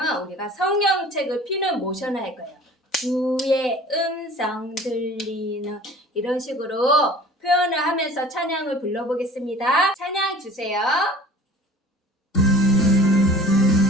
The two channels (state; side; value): normal; both; correlation 0.45